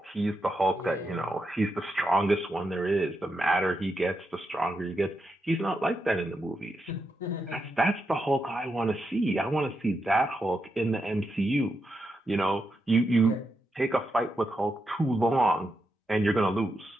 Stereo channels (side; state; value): both; normal; correlation 0.85